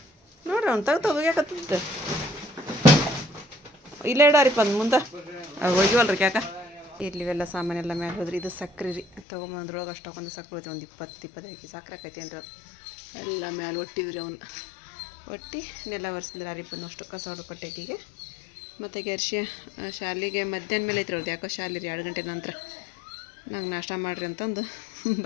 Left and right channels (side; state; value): right; drops out; at 9.2 s